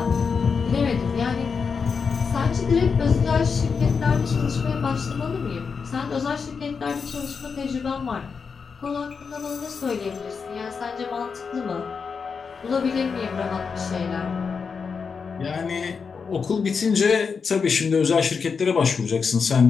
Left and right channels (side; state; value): right; quieter; 5.6 dB